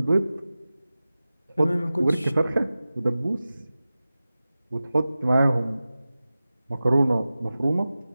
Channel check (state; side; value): inverted; both; correlation -0.95